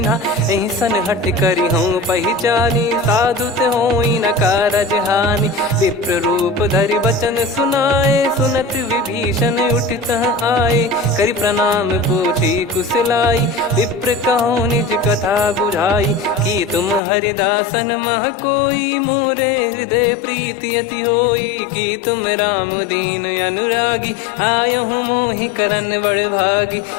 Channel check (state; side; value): drops out; right; at 17.0 s